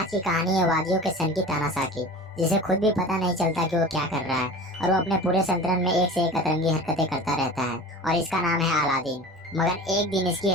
की कहानी है वादियों के सन की तानाशाह की, जिसे खुद भी पता नहीं चलता कि वो क्या कर रहा है और वो अपने पूरे सल्तनत में एक से एक अतरंगी हरकतें करता रहता है और इसका नाम है अलादीन। मगर एक दिन इसकी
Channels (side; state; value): both; normal; correlation 0.37